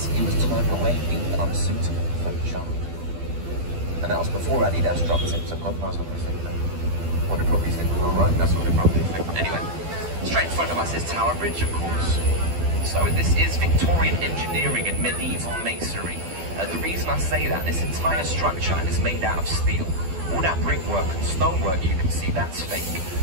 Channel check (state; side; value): late; left; 12 ms